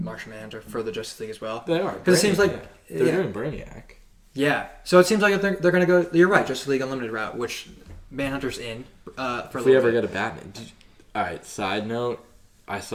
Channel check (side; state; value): both; identical; correlation 1.00